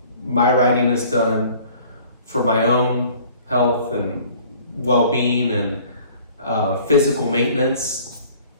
My riding is done for my own health and well-being and physical maintenance,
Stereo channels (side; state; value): both; inverted; correlation -0.52